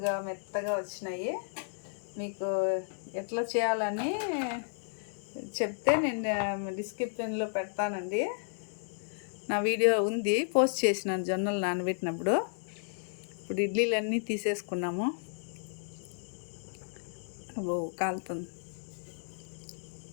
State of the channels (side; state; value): right; silent; 56 dB below the other